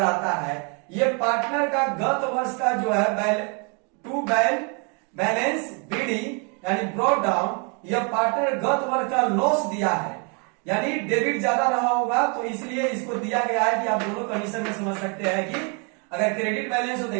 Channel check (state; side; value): quieter; left; 35.3 dB